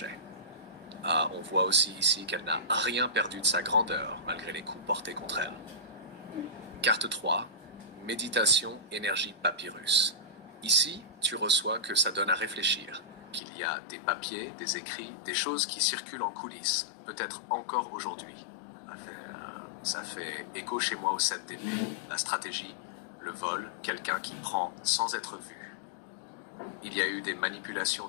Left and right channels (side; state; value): right; drops out; at 13.4 s